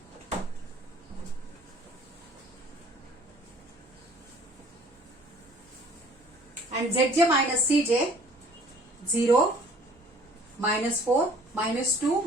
And Zj minus Cj, 0, minus 4, minus 2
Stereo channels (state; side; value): normal; both; correlation 0.53